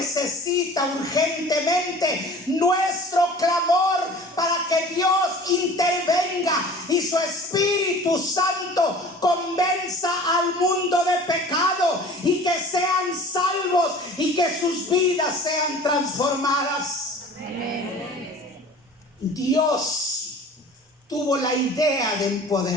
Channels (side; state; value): both; normal; correlation 0.44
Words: urgentemente nuestro clamor para que Dios intervenga y su Espíritu Santo convenza al mundo de pecado y que sean salvos y que sus vidas sean transformadas. Amén. Dios tuvo la idea de